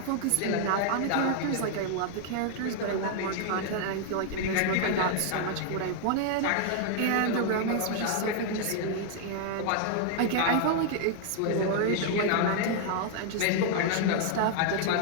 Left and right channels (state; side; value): different; both; correlation 0.00